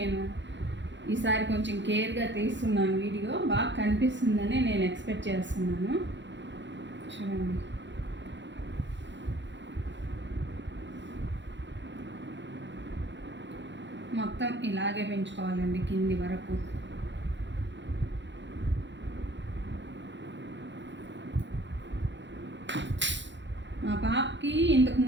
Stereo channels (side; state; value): left; late; 0.53 ms